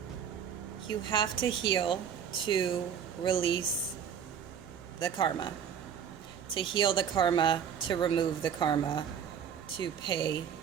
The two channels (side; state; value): left; quieter; 8.0 dB